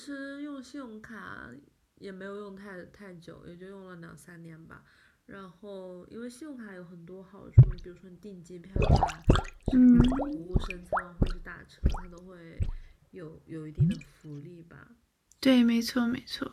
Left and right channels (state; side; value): identical; both; correlation 1.00